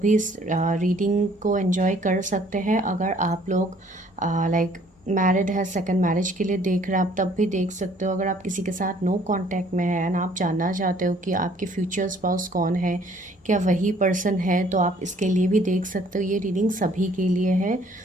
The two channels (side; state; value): both; normal; correlation 0.59